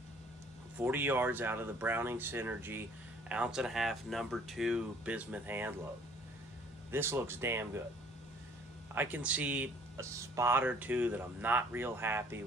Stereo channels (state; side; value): normal; both; correlation 0.57